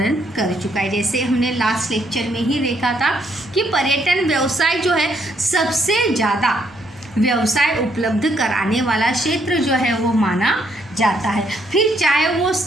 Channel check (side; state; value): both; normal; correlation 0.72